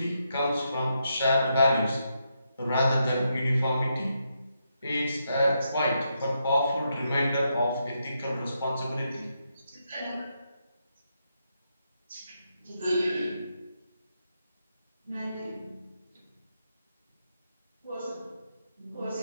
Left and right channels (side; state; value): both; inverted; correlation -0.81